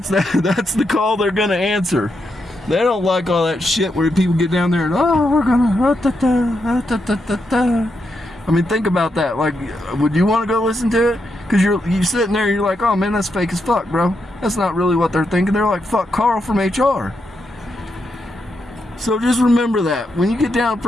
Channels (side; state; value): both; normal; correlation 0.83